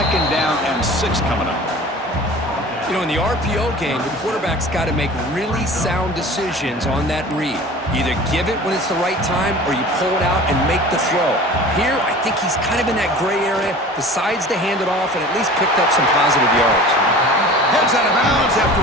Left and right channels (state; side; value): normal; both; correlation 0.41